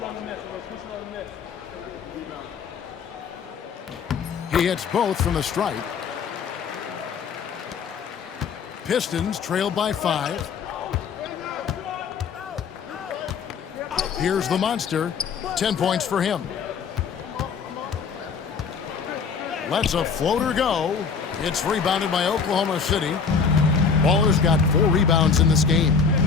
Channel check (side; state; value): right; quieter; 5.9 dB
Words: He hits both from the stripe. Pistons trailed by 5. Here's the monster. 10 points for him. Lets a floater go. It's rebounded by Oklahoma City. Baller's got 4 rebounds in this game.